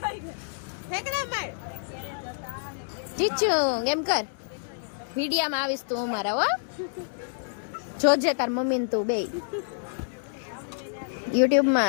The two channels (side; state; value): right; silent; digital silence